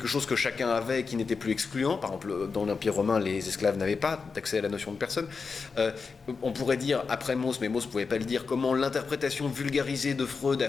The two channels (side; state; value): right; quieter; 5.0 dB